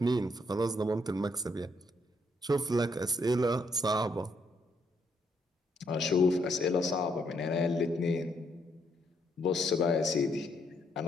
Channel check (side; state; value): both; normal; correlation 0.73